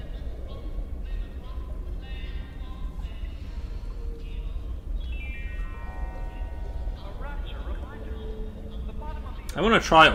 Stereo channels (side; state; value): both; identical; correlation 1.00